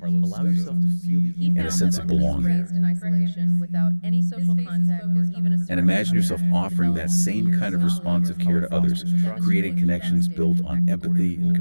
allow yourself to feel the He and a found sense that of those belonging. raised in isolation without any social contact or even a And imagine yourself offering that same kind of responsive care to others, creating connections built on empathy and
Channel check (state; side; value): inverted; both; correlation -1.00